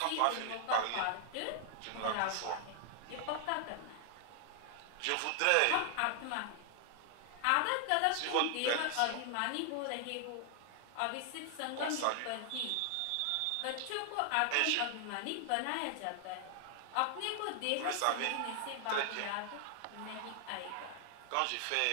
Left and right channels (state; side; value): different; both; correlation 0.00